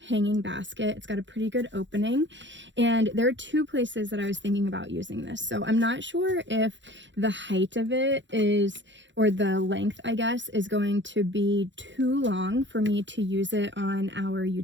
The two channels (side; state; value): left; late; 0.54 ms